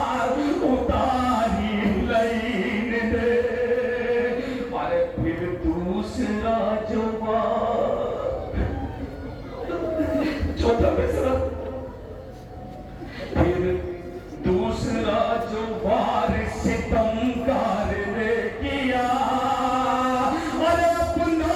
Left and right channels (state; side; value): identical; both; correlation 1.00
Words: उतारी लाइन ने, अरे फिर दूसरा जो चौथा मिसरा, फिर दूसरा जो वार सितमगार ने किया, अरे अपना